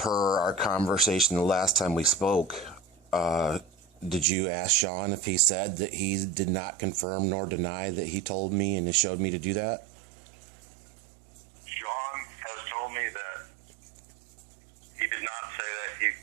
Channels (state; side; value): drops out; left; at 4.2 s